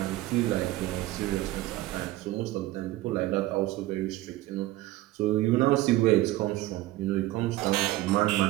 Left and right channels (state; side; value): quieter; left; 16.7 dB